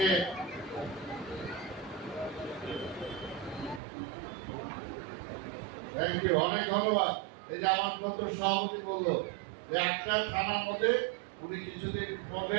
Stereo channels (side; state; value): left; drops out; at 3.8 s